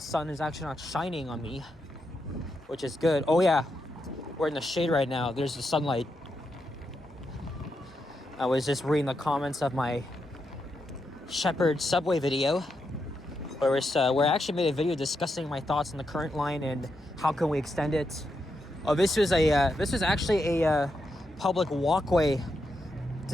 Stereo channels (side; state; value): both; normal; correlation 0.84